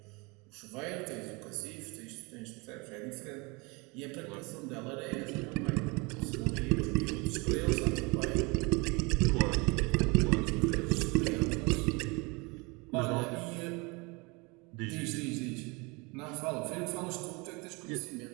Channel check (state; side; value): quieter; left; 27.8 dB